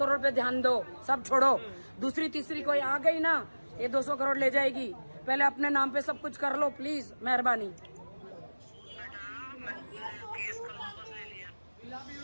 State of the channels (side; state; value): both; inverted; correlation -1.00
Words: पे ध्यान दो, सब छोड़ो। दूसरी तीसरी कोई आ गई ना ये 200 करोड़ ले जाएगी। पहले अपने नाम पे सब कुछ कर लो प्लीज, मेहरबानी। बेटा मैंने केस कल वापस ले लिया।